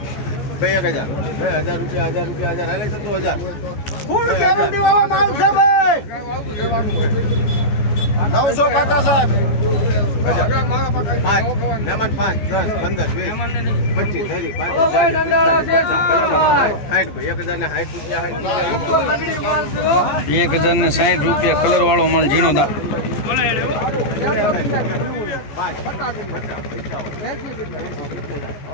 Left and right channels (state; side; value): late; right; 14 ms